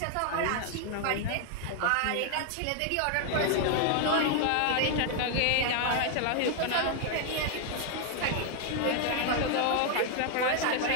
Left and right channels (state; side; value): different; both; correlation 0.00